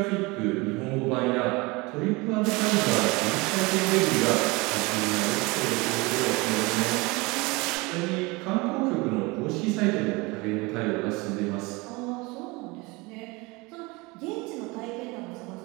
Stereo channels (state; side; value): quieter; left; 24.8 dB